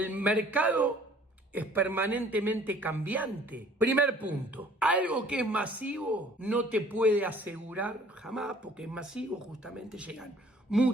mercado es permanentemente cambiante. Primer punto, algo que es masivo no te puede asegurar jamás, porque es masivo, justamente llegan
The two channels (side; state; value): both; normal; correlation 0.54